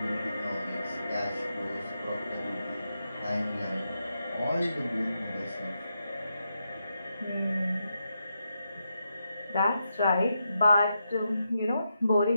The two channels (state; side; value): inverted; both; correlation -0.85